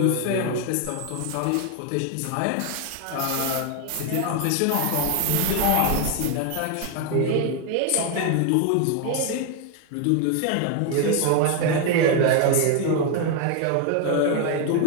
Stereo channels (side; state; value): both; different; correlation 0.01